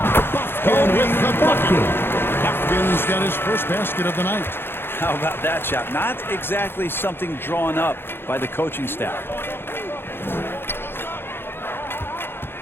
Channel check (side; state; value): right; late; 0.11 ms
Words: Bufkin with the bucket. Bufkin's got his first basket of the night. How about that shot? Not exactly something drawn up by the coaching staff.